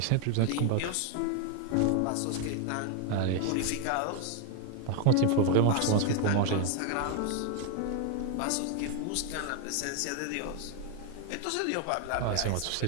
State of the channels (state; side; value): different; both; correlation 0.01